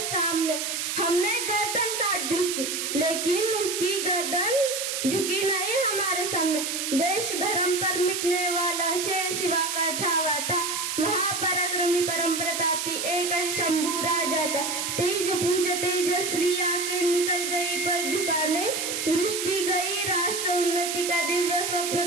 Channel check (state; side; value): noise; right; hiss, 2 dB below the sound